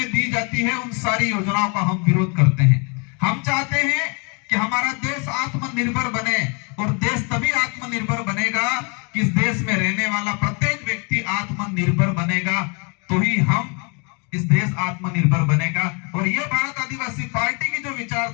दी जाती है, उन सारी योजनाओं का हम विरोध करते हैं। हम चाहते हैं कि हमारा देश आत्मनिर्भर बने। और देश तभी आत्मनिर्भर बनेगा कि इस देश में रहने वाला प्रत्येक व्यक्ति आत्मनिर्भर बनेगा, तो ही हम इस देश आत्मनिर्भर बनेगा। और ये भारत आदिवासी पार्टी की जो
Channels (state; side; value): quieter; right; 33.9 dB